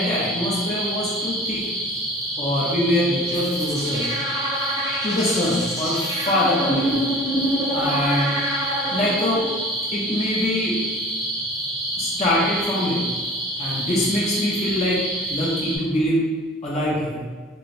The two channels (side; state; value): both; normal; correlation 0.43